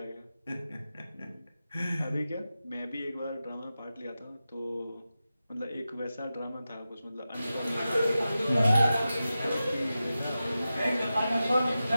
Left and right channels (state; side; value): inverted; both; correlation -0.93